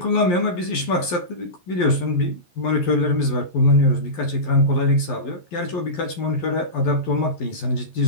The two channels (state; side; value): late; right; 11 ms